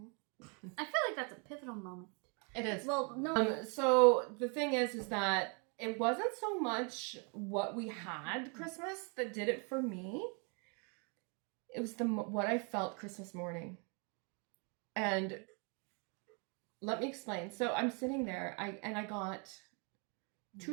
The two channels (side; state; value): left; quieter; 35.5 dB